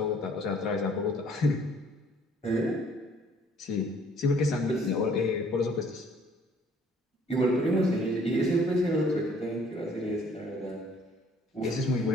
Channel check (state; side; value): normal; both; correlation 0.59